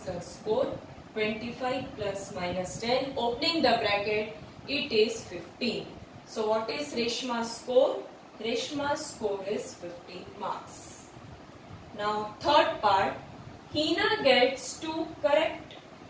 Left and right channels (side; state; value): both; identical; correlation 1.00